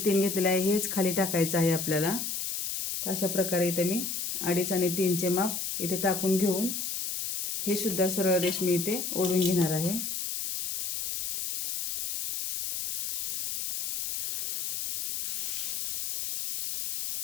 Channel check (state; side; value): noise; left; hiss, 2 dB below the sound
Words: 3 घेतलेलं आहे, हेच खाली टाकायचं आहे आपल्याला. तर अशा प्रकारे इथे मी 2.5 आणि 3चे माप इथे टाकून घेऊन हे सुद्धा सरळ रेष मी इथे ओढून घेणार आहे.